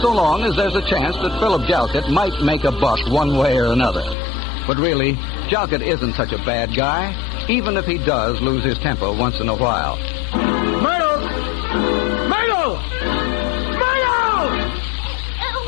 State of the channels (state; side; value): drops out; right; at 4.2 s